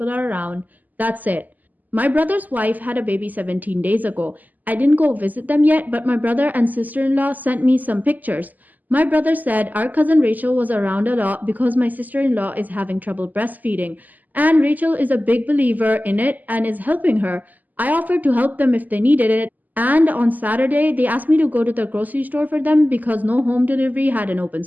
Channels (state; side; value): late; left; 0.082 ms